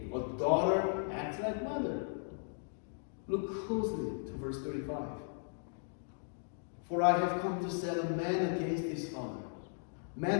A daughter acts like mother. Look closely to verse 35. For I have come to set a man against his father,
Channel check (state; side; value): silent; right; digital silence